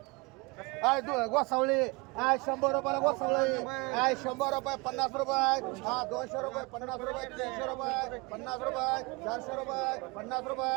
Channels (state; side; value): quieter; left; 27.6 dB